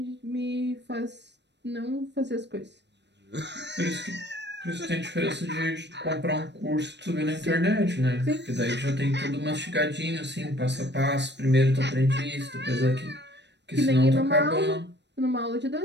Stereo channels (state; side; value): late; left; 0.51 ms